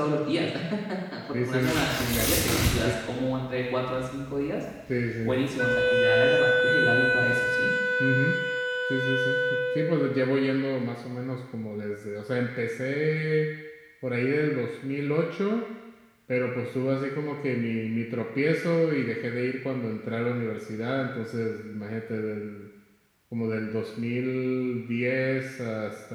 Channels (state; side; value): identical; both; correlation 1.00